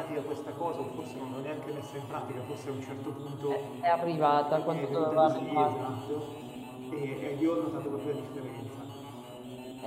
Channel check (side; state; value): both; identical; correlation 1.00